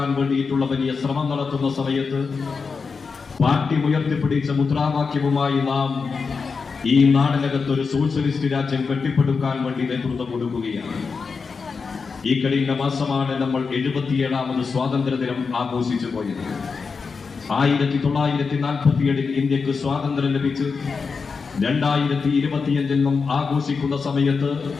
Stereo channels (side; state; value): right; quieter; 5.0 dB